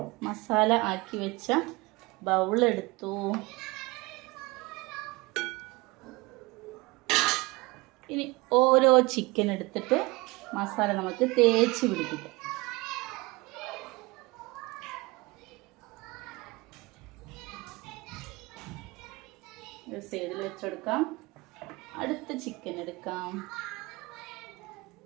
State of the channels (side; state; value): left; quieter; 23.9 dB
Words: മസാല ആക്കി വെച്ച ബൗളെടുത്തു. ഇനി ഓരോ ചിക്കൻ എടുത്തിട്ട് മസാല നമുക്ക് തേച്ച് പിടിപ്പിക്കാം. ഒരു സൈഡിൽ വെച്ചെടുക്കാം. അടുത്ത ചിക്കൻ എടുക്കാം.